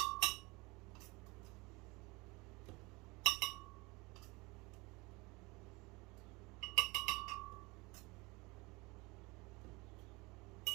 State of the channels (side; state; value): left; quieter; 24.7 dB